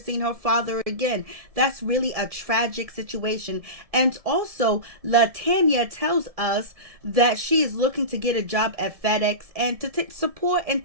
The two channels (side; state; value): left; late; 1.7 ms